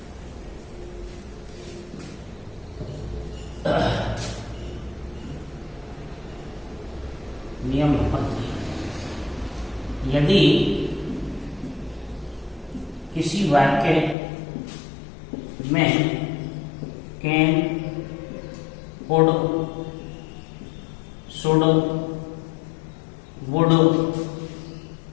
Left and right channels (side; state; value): right; drops out; at 14.2 s